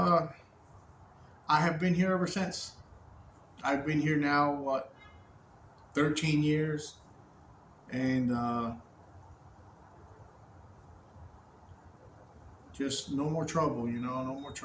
have been here ever since. I've been here now, 13 years. And just no more trouble, no more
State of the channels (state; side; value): identical; both; correlation 1.00